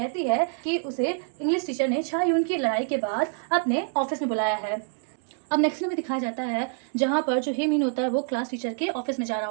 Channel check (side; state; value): left; silent; digital silence